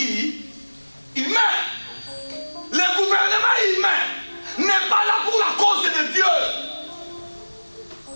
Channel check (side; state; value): both; inverted; correlation -1.00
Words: Le gouvernement humain n'est pas là pour la cause de Dieu.